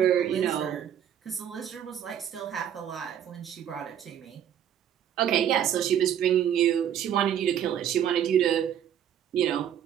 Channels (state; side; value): quieter; left; 9.8 dB